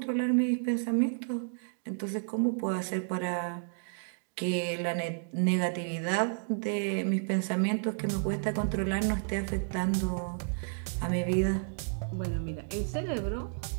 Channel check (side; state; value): left; silent; digital silence